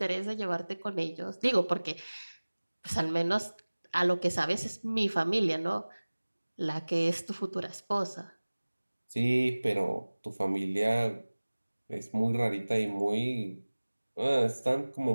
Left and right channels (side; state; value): both; inverted; correlation -1.00